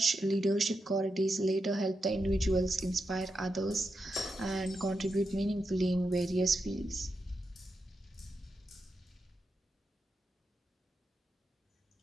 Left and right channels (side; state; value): both; normal; correlation 0.86